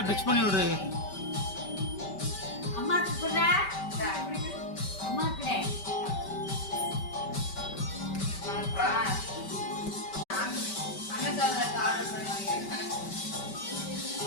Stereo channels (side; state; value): right; late; 5.2 ms